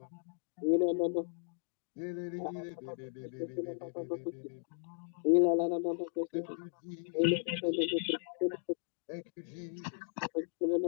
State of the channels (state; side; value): silent; right; digital silence